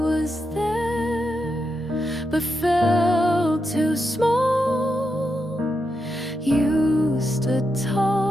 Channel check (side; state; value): both; normal; correlation 0.85